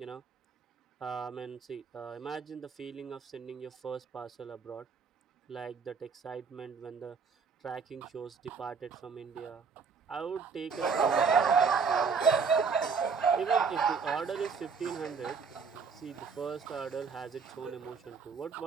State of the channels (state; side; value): quieter; left; 5.5 dB